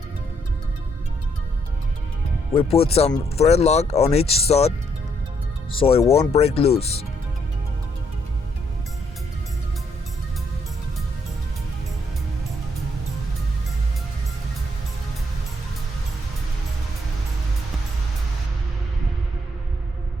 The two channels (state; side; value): normal; both; correlation 0.72